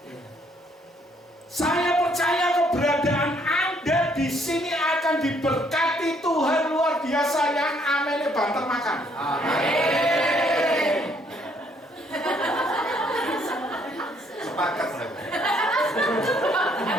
Saya percaya keberadaan Anda di sini akan diberkati Tuhan luar biasa yang amennya banter makan. Amin. Sepakat saya.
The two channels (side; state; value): both; normal; correlation 0.67